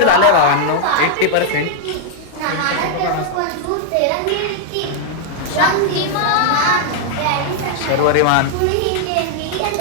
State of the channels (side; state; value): both; different; correlation -0.01